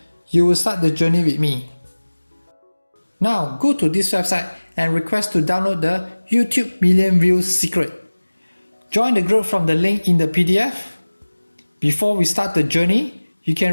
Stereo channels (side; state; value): both; inverted; correlation -1.00